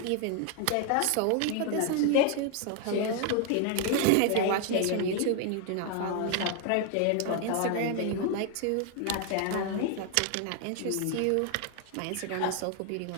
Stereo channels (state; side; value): different; both; correlation 0.00